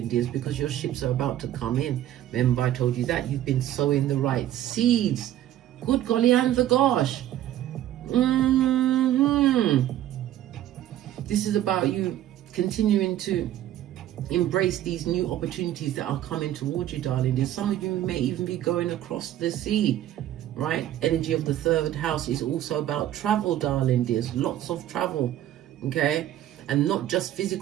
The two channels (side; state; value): left; quieter; 12.6 dB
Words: dears, because your ships are about to come in. Remember, I told you that. You've been sowing the right seeds. Good golly and the gosh. This is about you continuing to embrace these new opportunities that are coming towards you, darling dears. Some of you may even be going across the sea, right? Energy of the 3rd house is also about travel, darling dears. Lots of travel. Okay, and not just